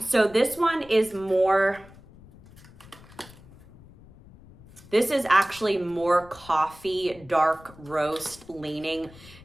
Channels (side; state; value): left; noise; rumble, 22 dB below the sound